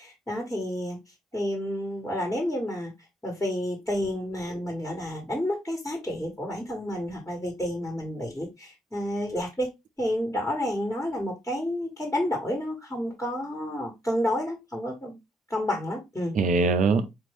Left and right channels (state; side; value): normal; both; correlation 0.75